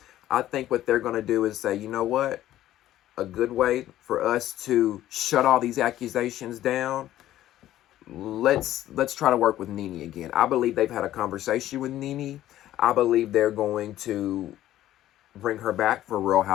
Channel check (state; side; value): quieter; right; 13.5 dB